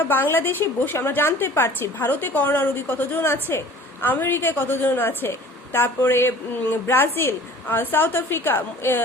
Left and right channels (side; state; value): both; normal; correlation 0.46